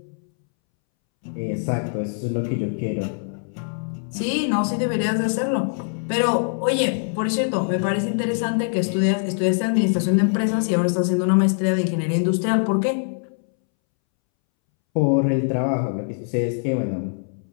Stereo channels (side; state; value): right; silent; 63 dB below the other